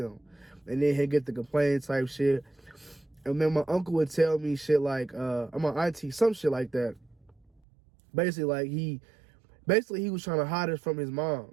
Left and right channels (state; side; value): drops out; left; at 7.6 s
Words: And then he'd get the complaint type shit. And then my uncle would tell me shit like, my auntie, some shit like that. Basically, like he was trying to hide us from his